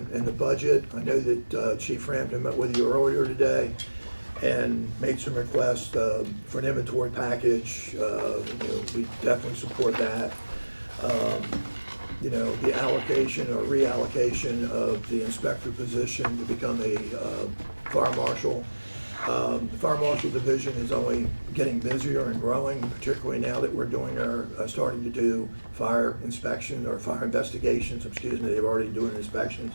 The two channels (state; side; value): inverted; both; correlation -1.00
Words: and the budget. I know that Chief Frampton met with you earlier today and made some requests for an inventory package. You know, we definitely support that. You know, the allocation or reallocation of the inspector position to become a fire marshal. The fire marshal division is only getting busier and growing, particularly now that we're doing starting to do fire inspection or fire investigations. Excuse me, they've already doing inspections.